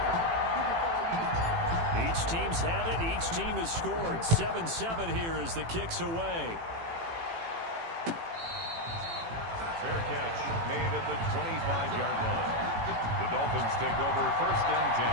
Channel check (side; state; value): left; late; 18 ms